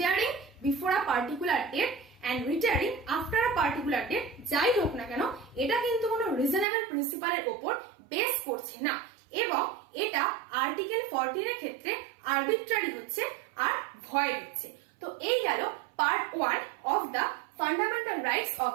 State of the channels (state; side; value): drops out; left; at 6.7 s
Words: before a particular date and retiring after a particular date যাই হোক না কেন এটা কিন্তু কোনো রিজনেবল প্রিন্সিপালের উপর বেস করছে না এবং এটা আর্টিকেল 14 এর ক্ষেত্রে আরবিট্রারি হচ্ছে আর ভয়েড হচ্ছে। তো এই গেল part 1 of the fundamental rights of